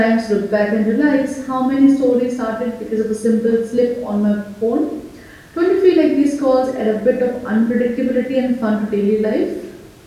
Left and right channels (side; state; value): both; identical; correlation 1.00